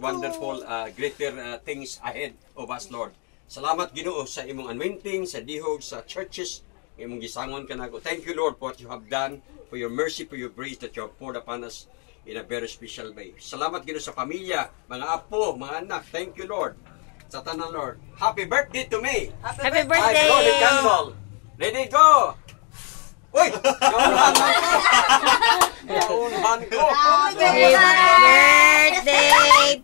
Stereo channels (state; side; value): quieter; right; 37.1 dB